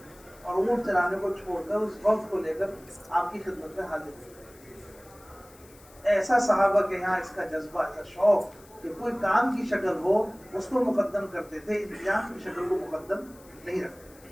اور اونٹ چرانے کو چھوڑ کر اس وقت کو لے کر آپ کی خدمت میں حاضر ہوئے. ایسا صحابہ کے یہاں اس کا جذبہ، ایسا شوق کہ کوئی کام کی شکل ہو اس کو مقدم کرتے تھے، انتظام کی شکل کو مقدم نہیں رکھتے.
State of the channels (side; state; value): left; noise; hiss, 25 dB below the sound